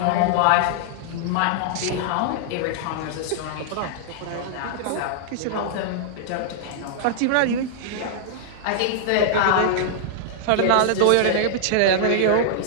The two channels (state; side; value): different; both; correlation -0.01